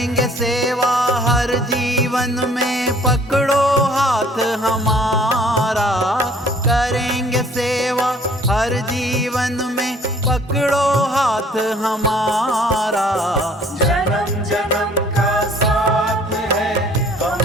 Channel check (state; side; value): normal; both; correlation 0.56